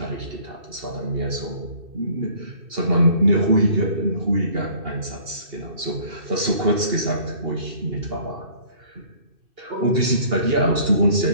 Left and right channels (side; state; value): left; late; 2.6 ms